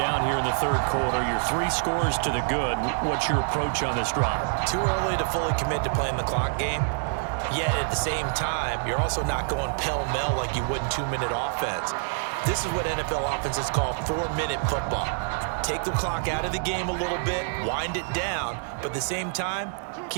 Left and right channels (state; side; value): silent; left; digital silence